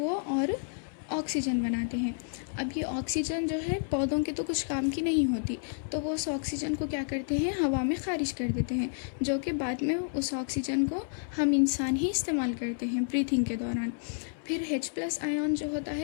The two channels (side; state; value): right; silent; 58 dB below the other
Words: और ऑक्सीजन बनाते हैं। अब ये ऑक्सीजन जो है पौधों के तो कुछ काम की नहीं होती, तो वो उस ऑक्सीजन को क्या करते हैं, हवा में ख़ारिज कर देते हैं, जो कि बाद में उस ऑक्सीजन को हम इंसान ही इस्तेमाल करते हैं ब्रीथिंग के दौरान। फिर H+ आयन जो होता